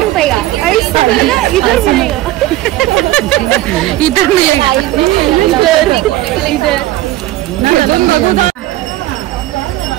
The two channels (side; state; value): left; quieter; 16.0 dB